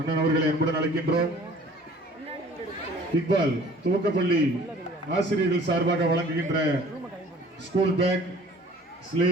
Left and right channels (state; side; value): normal; both; correlation 0.50